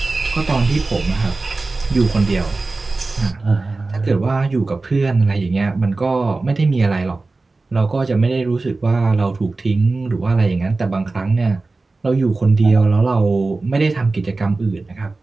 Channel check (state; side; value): quieter; left; 3.5 dB